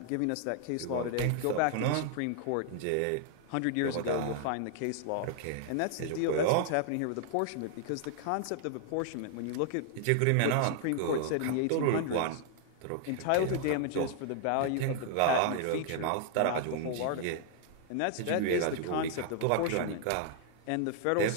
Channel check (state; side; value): different; both; correlation 0.00